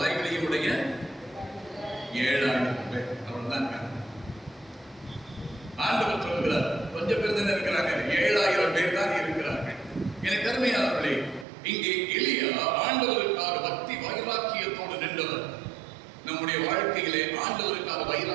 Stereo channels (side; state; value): left; drops out; at 11.5 s